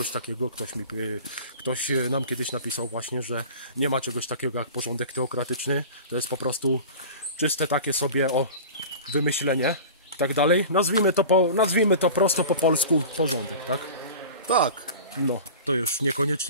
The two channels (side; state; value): both; inverted; correlation -0.37